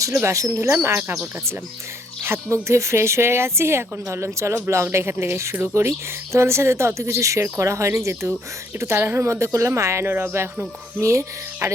ছিল, বাসন ধুলাম আর কাপড় কাচলাম। হাত মুখ ধুয়ে ফ্রেশ হয়ে গেছি, এখন ভাবলাম চলো ব্লগটা এখান থেকে শুরু করি। তোমাদের সাথে তো অত কিছু শেয়ার করা হয়নি, যেহেতু একটু তাড়াহুড়োর মধ্যে করলাম। আয়ানোর বাবা এখনও ঘুমিয়ে, আর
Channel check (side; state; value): both; normal; correlation 0.67